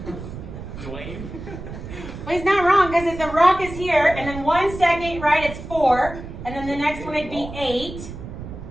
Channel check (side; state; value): right; noise; rumble, 11 dB below the sound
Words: Dwayne? Well, he's not wrong because if the rock is here, and then 1 second, right, it's 4, and then the next one it'd be 8,